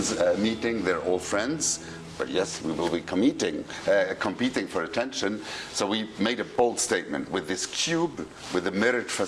meeting, they're all friends. But yes, we will be competing for attention. So we made a bold statement with this cube, with a mirrored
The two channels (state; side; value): identical; both; correlation 1.00